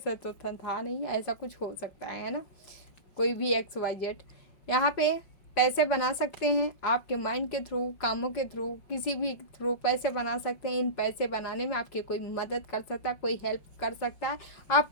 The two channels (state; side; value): late; right; 5.4 ms